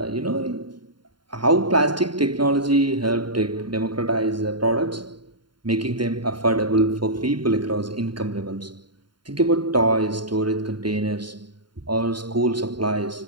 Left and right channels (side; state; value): left; late; 0.72 ms